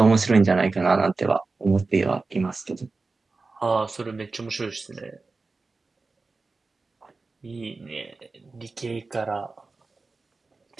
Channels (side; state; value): left; quieter; 3.8 dB